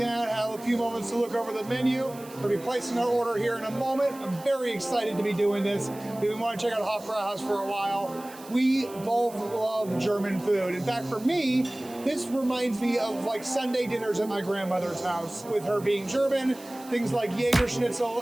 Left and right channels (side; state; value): right; noise; hiss, 19 dB below the sound